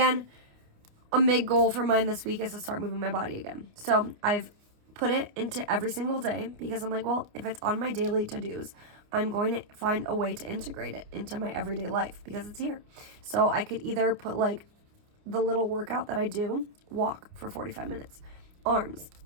a big goal for mine this week is to start moving my body again. So I've put it into every single day because I'm like, well, if it's on my daily to-dos, I'm going to find a way to integrate it into my everyday life because it's here. So I could either put like the little workout that I do, walk for 45 minutes, arms,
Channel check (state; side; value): late; left; 29 ms